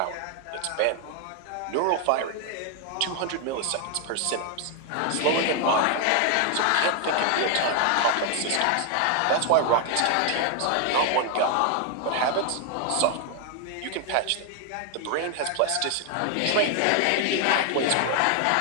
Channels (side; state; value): both; different; correlation 0.00